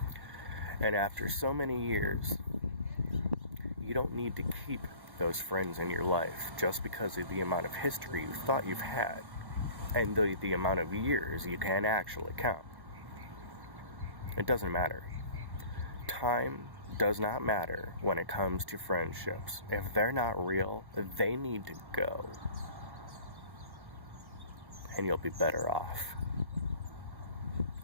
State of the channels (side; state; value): left; late; 1.1 ms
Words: And after so many years, you don't need to keep those friends in your life just because of the amount of history you thought you've had and the amount of years you can actually count. It doesn't matter. Time does not matter when it comes to friendships. If they're not real, they need to go. And you'll be better off.